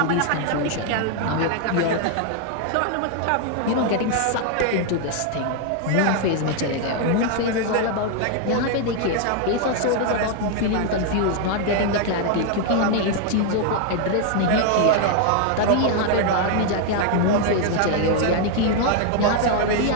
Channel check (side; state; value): both; different; correlation 0.00